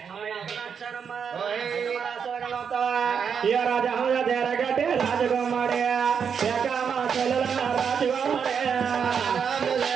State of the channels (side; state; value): left; quieter; 6.9 dB